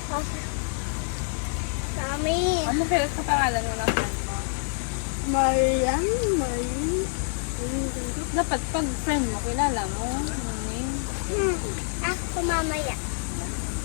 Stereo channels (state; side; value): silent; right; digital silence